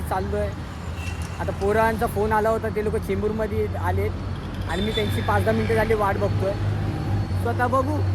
चाललो आहे. आता पोरांचा फोन आला होता, ते लोक चेंबूरमध्ये आलेत आणि मी त्यांची 5-10 मिनटं झाली वाट बघतो आहे. स्वतः बघू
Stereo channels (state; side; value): identical; both; correlation 1.00